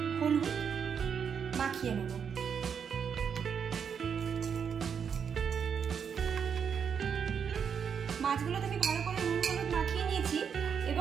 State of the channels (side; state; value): left; quieter; 7.1 dB